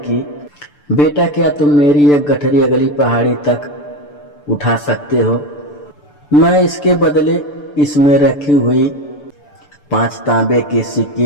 बेटा, क्या तुम मेरी एक गठरी अगली पहाड़ी तक उठा सकते हो? मैं इसके बदले इसमें रखी हुई 5 तांबे के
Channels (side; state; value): right; late; 6.8 ms